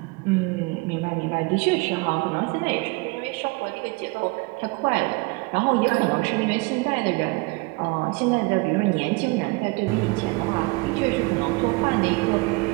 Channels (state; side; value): quieter; left; 26.3 dB